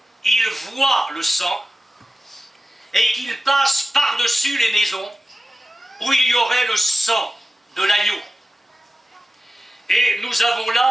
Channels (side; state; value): both; normal; correlation 0.95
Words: il voit le sang et qu'il passe par-dessus les maisons où il y aurait le sang de l'agneau. Et nous avons